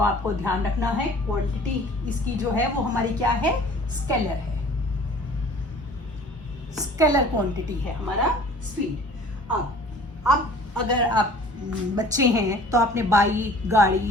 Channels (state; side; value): normal; both; correlation 0.48